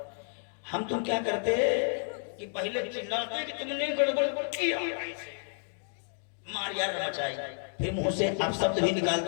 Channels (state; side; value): silent; right; digital silence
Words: हम तुम क्या करते, कि पहले चिल्लाते कि तुमने गड़बड़ किया, मार यार मचाई, फिर मुंह से अपशब्द भी